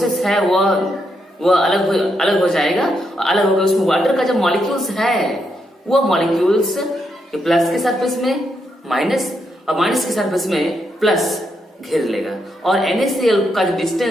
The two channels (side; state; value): both; normal; correlation 0.80